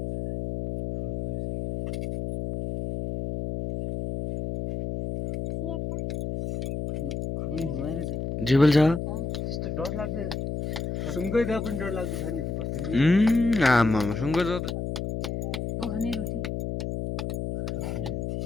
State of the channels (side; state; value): left; noise; hum, 4 dB below the sound